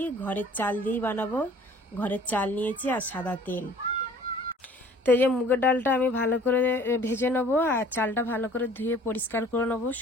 ঘরের চাল দিয়েই বানাবো। ঘরের চাল নিয়েছি আর সাদা তেল। তো এই যে মুগের ডালটা আমি ভালো করে ভেজে নেবো, আর চালটা ভালো করে ধুয়ে পরিষ্কার করে নেবো।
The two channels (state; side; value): normal; both; correlation 0.52